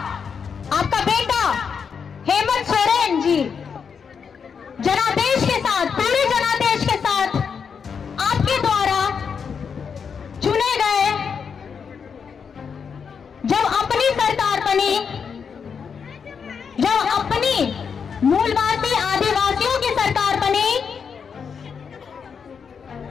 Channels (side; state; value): right; quieter; 6.4 dB